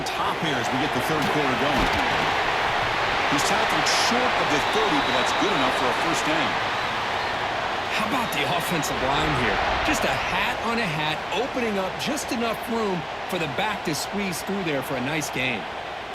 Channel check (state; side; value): identical; both; correlation 1.00